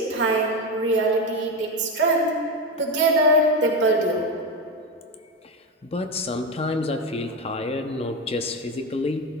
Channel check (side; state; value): both; normal; correlation 0.15